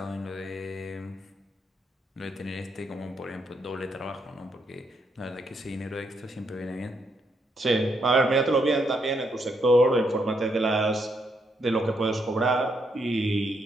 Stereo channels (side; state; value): both; normal; correlation 0.76